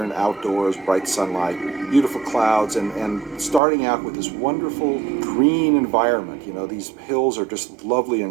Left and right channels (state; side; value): drops out; left; at 3.6 s